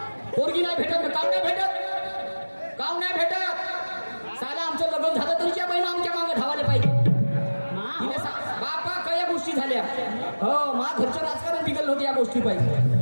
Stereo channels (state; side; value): inverted; both; correlation -1.00